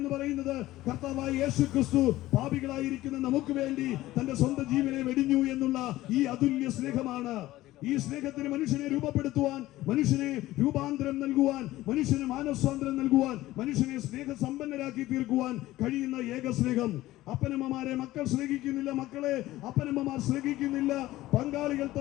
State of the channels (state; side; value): quieter; right; 16.4 dB